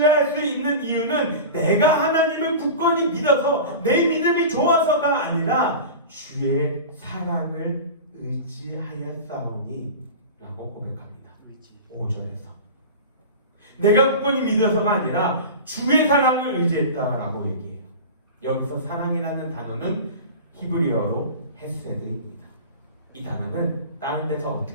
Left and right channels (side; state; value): both; inverted; correlation -0.32